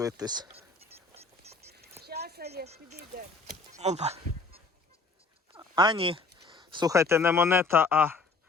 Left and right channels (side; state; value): right; quieter; 3.8 dB